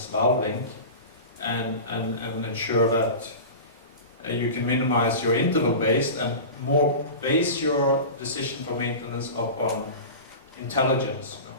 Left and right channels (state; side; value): inverted; both; correlation -0.31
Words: valve link and ensure that you can minimize your interval-based and more base your decision for maintenance upon intelligence, you